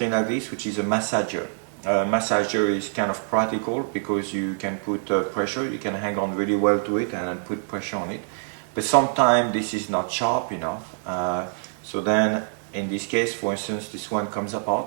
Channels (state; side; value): silent; left; 62 dB below the other